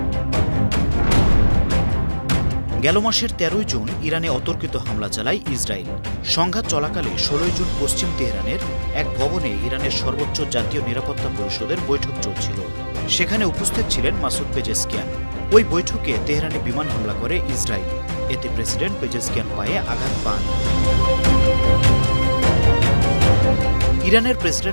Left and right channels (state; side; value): inverted; both; correlation -1.00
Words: গেল মাসের ১৩ জুন ইরানে অতর্কিত হামলা চালায় ইসরায়েল। সংঘাত চলাকালে ১৬ জুন পশ্চিম তেহরানের এক ভবনে ইরানের সর্বোচ্চ জাতীয় নিরাপত্তা পরিষদের বৈঠক চলছিল। সেখানে উপস্থিত ছিলেন মাসুদ পেজেশকিয়ান। ওই বৈঠকে তেহরানে বিমান হামলা করে ইসরায়েল। এতে প্রেসিডেন্ট পেজেশকিয়ান পায়ে আঘাত পান। ইরানের